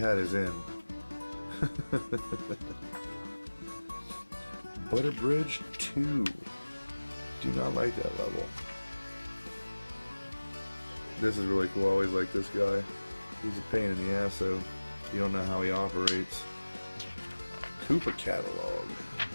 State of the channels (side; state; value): both; inverted; correlation -1.00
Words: his in. Butter Bridge 2. Do not like that level. This is really cool. I always like this guy. He's a pain in the ass, so you don't know how he operates. Koopa Catalog.